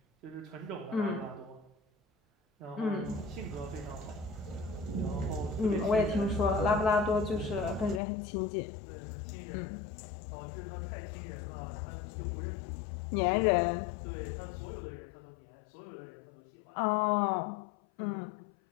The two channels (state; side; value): drops out; right; at 8.0 s